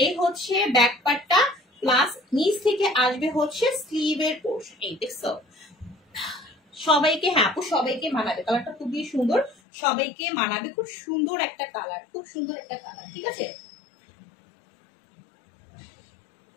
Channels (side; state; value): right; drops out; at 9.6 s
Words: হচ্ছে ব্যাক পার্টটা, প্লাস নিচ থেকে আসবে হচ্ছে স্লিভের পোর্শন। এই দেখছো, সবাইকে হ্যাঁ আপু সবাইকে মানাবে, কালারটা খুবই সুন্দর, সবাইকে মানাবে, খুব সুন্দর একটা কালার, খুব সুন্দর একটা কালার, ঠিক আছে?